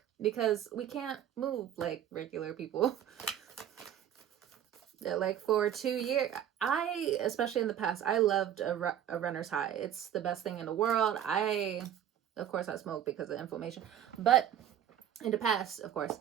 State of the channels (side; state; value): left; quieter; 10.2 dB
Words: because we can't move like regular people. Like for 2 years, especially in the past, I loved a runner's high. It's the best thing in the world. Of course, I smoke because of inflammation, but in the past, of course,